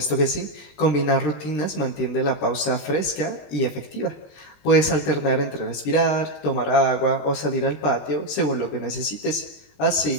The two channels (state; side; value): late; right; 20 ms